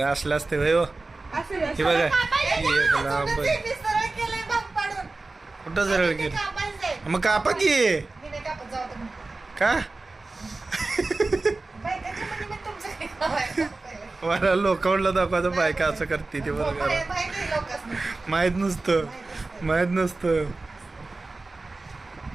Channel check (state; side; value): quieter; left; 3.4 dB